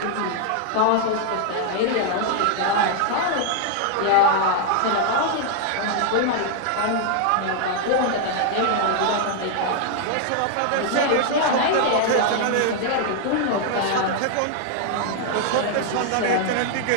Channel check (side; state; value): both; different; correlation 0.00